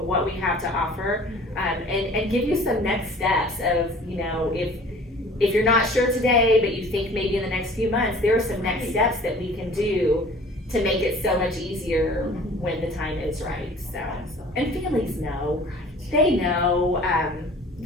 what we have to offer, and give you some next steps of, if you're not sure today, but you think maybe in the next few months, there are some next steps that we can do to make it so much easier when the time is right, so. And families know, they know,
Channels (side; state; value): both; normal; correlation 0.48